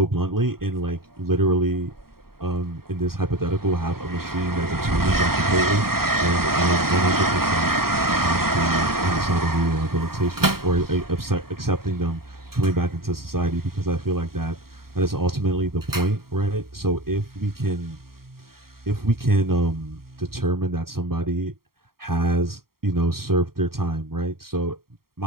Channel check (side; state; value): left; late; 0.93 ms